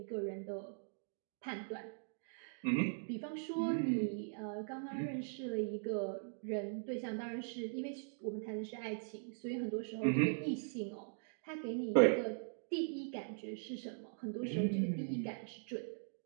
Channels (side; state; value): left; silent; digital silence